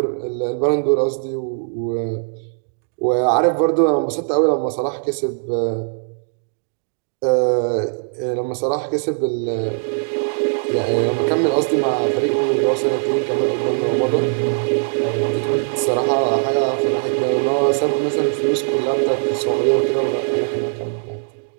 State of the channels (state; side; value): silent; left; digital silence